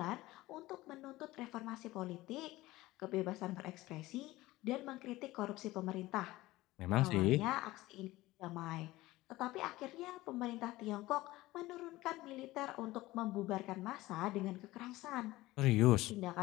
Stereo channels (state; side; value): quieter; right; 18.2 dB